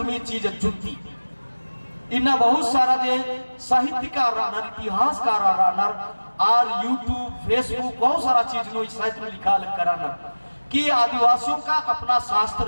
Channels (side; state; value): both; inverted; correlation -1.00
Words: चीज जुटी इन्ना बहुत सारा जे साहित्यकार रानर इतिहासकार रानर और यूट्यूब फेसबुक बहुत सारा चीज नो साहित्य में लिखा कराना कि आदिवासियों का अपना शास्त्र